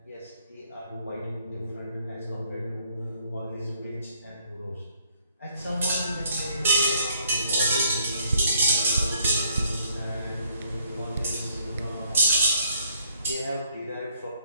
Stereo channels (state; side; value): inverted; both; correlation -0.67